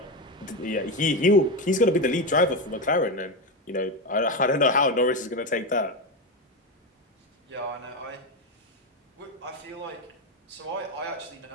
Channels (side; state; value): both; normal; correlation 0.13